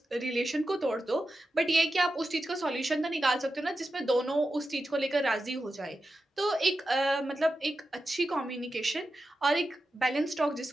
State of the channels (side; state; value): both; normal; correlation 0.91